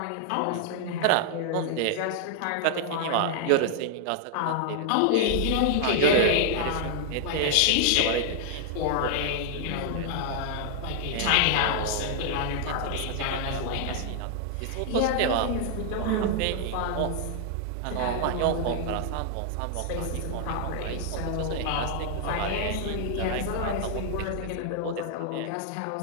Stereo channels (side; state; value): both; different; correlation 0.00